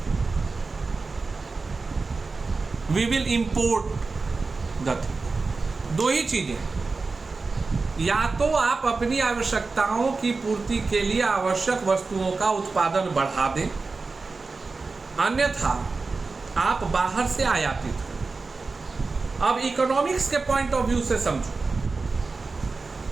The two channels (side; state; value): left; quieter; 4.0 dB